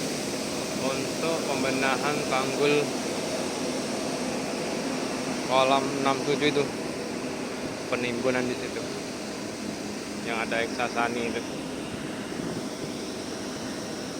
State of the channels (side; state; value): both; identical; correlation 1.00